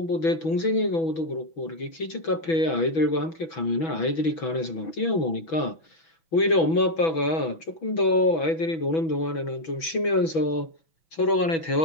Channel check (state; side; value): late; right; 6.1 ms